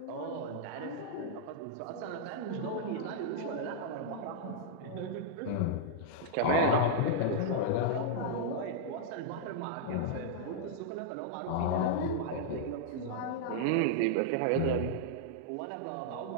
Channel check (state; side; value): different; both; correlation -0.02